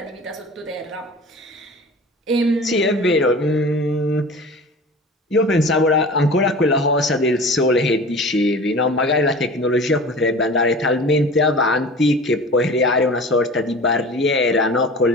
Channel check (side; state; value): both; normal; correlation 0.38